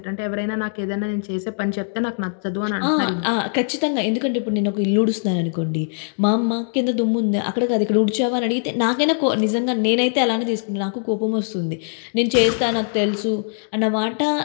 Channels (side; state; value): right; silent; digital silence